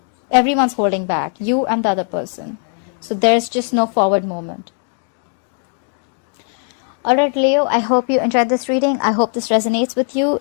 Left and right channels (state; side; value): silent; right; 56 dB below the other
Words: Everyone's holding back. You and the other person. So there's just no forward movement. Alright, Leo, I hope you enjoyed this reading. I hope this resonates with you.